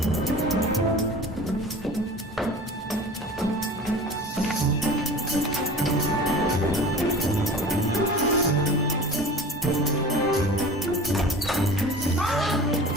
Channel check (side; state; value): both; normal; correlation 0.39